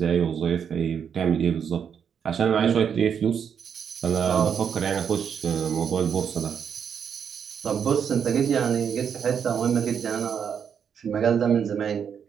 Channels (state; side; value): quieter; left; 7.5 dB